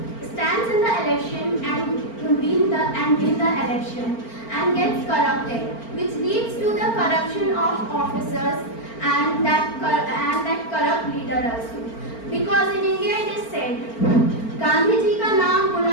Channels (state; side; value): late; right; 4.4 ms